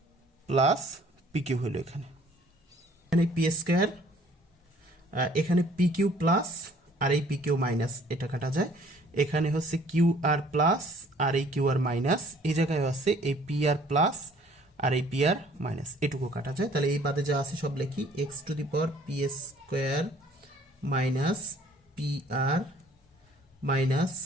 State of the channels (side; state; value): both; normal; correlation 0.57